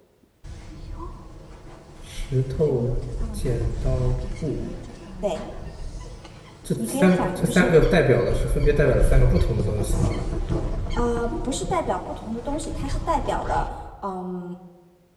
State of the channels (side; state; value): both; identical; correlation 1.00